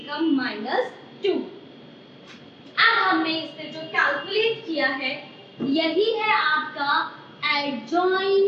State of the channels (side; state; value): both; identical; correlation 1.00